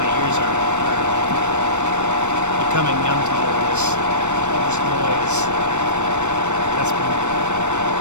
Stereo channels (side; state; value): left; late; 0.84 ms